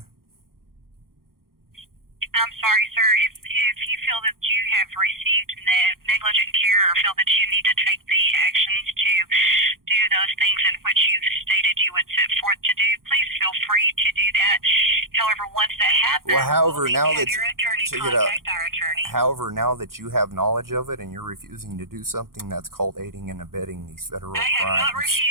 I'm sorry, sir. If you feel that you have received negligent care or feel that you need to take the actions to do those things in which you've stated you would set forth to do, please feel free to do that. However, once that happens, Well, however, we'll now have that your attorney check it out. contact our attorney. However, now that you have knowledge of it and you're refusing to do something, that's called aiding and abetting these federal I have not crimes.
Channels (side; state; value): left; late; 0.92 ms